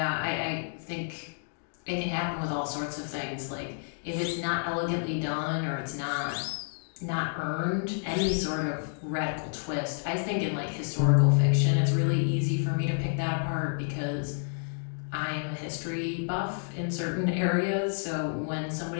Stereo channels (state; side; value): silent; right; digital silence